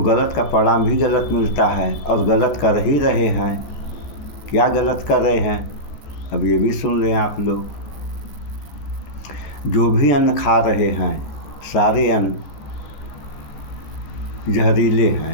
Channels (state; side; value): late; right; 14 ms